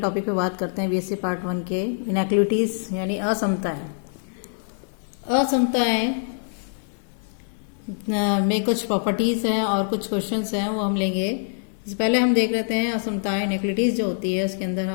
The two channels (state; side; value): silent; right; 57 dB below the other